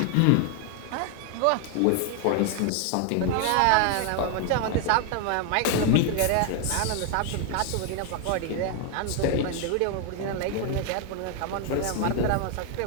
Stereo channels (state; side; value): different; both; correlation 0.01